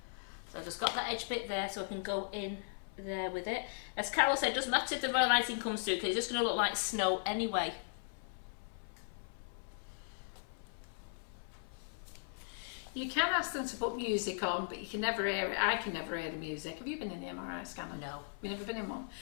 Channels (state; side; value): silent; right; 53 dB below the other